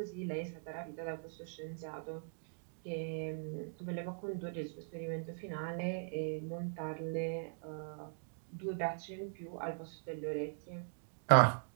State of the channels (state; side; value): silent; left; digital silence